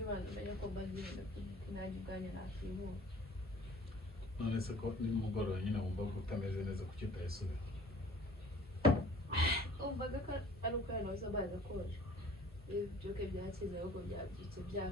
abantu bajya ko bazira kunajya ubwanya nakibu. None se ko nimugoroba nyine wumva ko utameze neza kuki utayisubira. Umvaga ko ari uko yanoza baza koje. Ibyo byakize ahubwo byabyitse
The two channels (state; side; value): normal; both; correlation 0.50